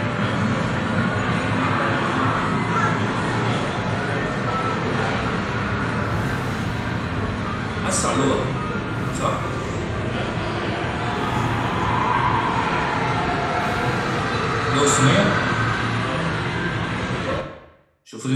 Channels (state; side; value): identical; both; correlation 1.00